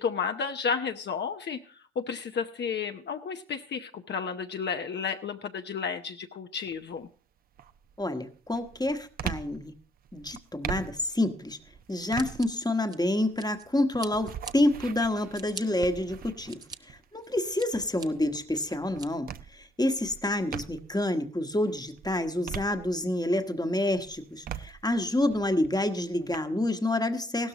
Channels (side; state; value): both; normal; correlation 0.67